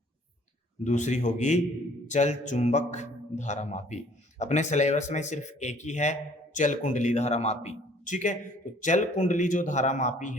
दूसरी होगी चल चुंबक धारामापी। अपने सिलेबस में सिर्फ एक ही है, चल कुंडली धारामापी। ठीक है, तो चल कुंडली जो धारामापी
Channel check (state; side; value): normal; both; correlation 0.57